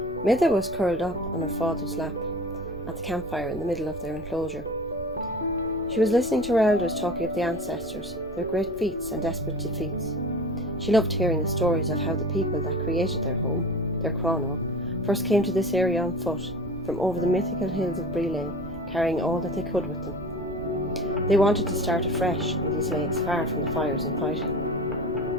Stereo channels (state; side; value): noise; right; rumble, 16 dB below the sound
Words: Mide was curled up on her father's lap at the campfire in the middle of their enclosure. She was listening to her elders talking of the ancestors, their great feats and desperate defeats. She loved hearing the stories of how the people that created their home, their Cronach, first came to this area on foot, from over the mythical hills of Brile, carrying all that they could with them. They wanted to start afresh in these lakes, far from the fires and fighting.